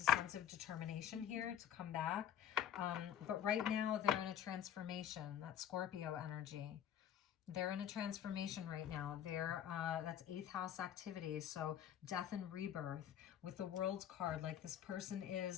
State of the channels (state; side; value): quieter; right; 10.0 dB